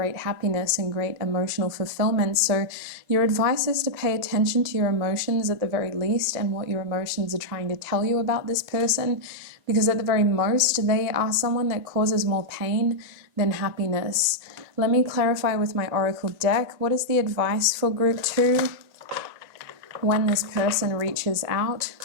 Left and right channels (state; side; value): late; left; 2.0 ms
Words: happiness and great emotional fulfillment. So your advice is to pay attention to your emotions at the very least and what your emotions are trying to tell you about this person, because at the very most, they are someone that causes more pain than happiness. Let me clarify with my Oracle deck. What is the advice for group 2 when this person reaches out?